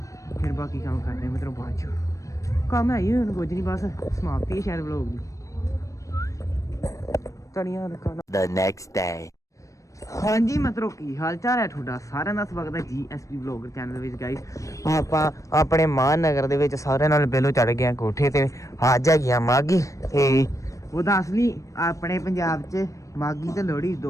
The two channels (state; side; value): late; right; 0.16 ms